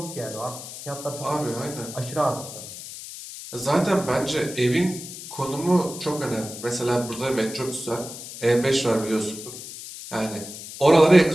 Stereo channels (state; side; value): noise; left; hiss, 12 dB below the sound